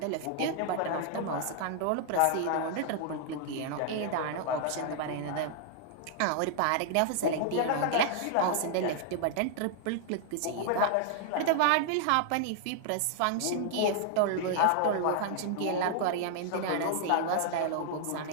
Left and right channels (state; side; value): different; both; correlation -0.01